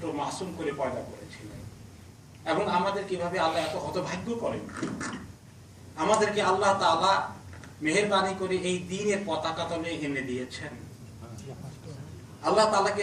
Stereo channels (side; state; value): both; identical; correlation 1.00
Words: মাসুম করে পয়দা করেছিলেন, এবং আমাদের কিভাবে আল্লাহ এত হতভাগ্য করেন। আমাদেরকে আল্লাহ তাআলা মেহেরবানি করে এই দ্বীনের পতাকা তলে এনে দিয়েছেন। আল্লাহ তাআলাকে